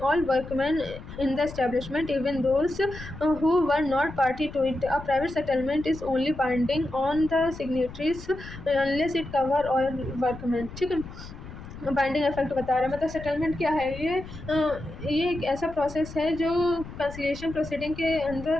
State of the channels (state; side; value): noise; left; rumble, 13 dB below the sound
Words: all workman in the establishment even those who were not party to it. A private settlement is only binding on the signatories unless it cover all workman. ठीक है, बाइंडिंग इफेक्ट बता रहा है। मतलब सेटलमेंट क्या है, ये एक ऐसा प्रोसेस है जो कंसिलिएशन प्रोसीडिंग के